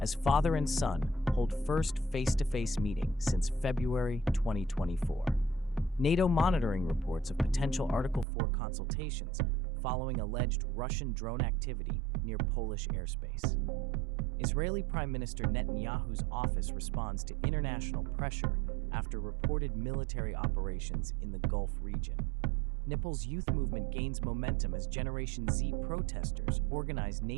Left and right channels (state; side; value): drops out; left; at 8.2 s